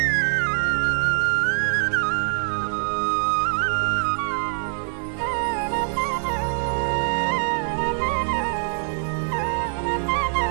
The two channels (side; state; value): left; silent; digital silence